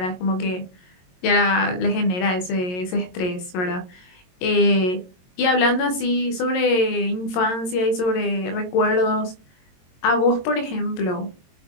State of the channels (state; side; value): late; right; 22 ms